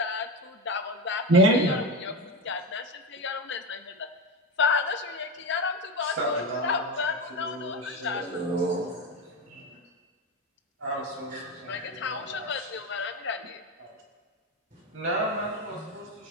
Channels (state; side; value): normal; both; correlation 0.18